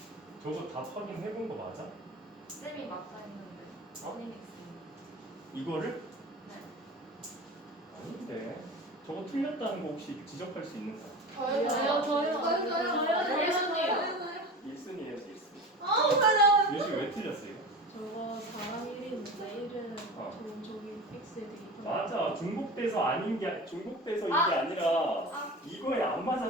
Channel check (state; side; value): normal; both; correlation 0.32